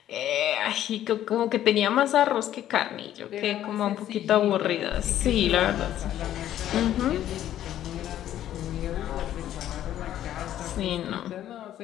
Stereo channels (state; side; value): quieter; right; 12.0 dB